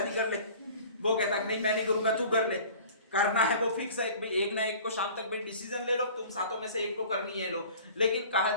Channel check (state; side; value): inverted; both; correlation -0.45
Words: कर ले। वो कहता नहीं मैं नहीं करूंगा, तू कर ले। करना है वो फिक्स है भाई, एक ना एक को शाम तक भाई डिसीजन ले लो, तुम सातों में से एक को करनी है लो। लेकिन कहा